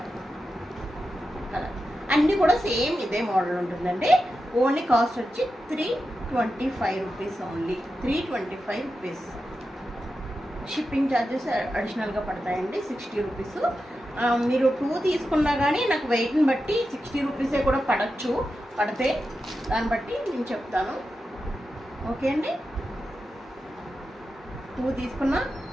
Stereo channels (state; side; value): normal; both; correlation 0.90